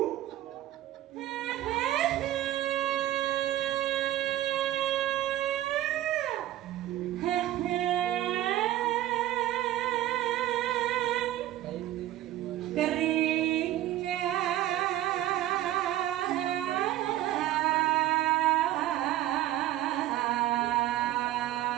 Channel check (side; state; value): left; quieter; 14.0 dB